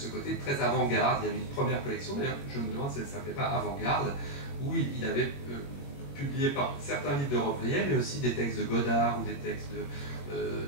côté très avant-garde. Il y avait une première collection, d'ailleurs, je me demande si elle ne s'appelait pas Avant-garde, où il avait publié certains livres de Robbe-Grillet, mais aussi des textes de Godard ou des textes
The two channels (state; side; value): late; right; 21 ms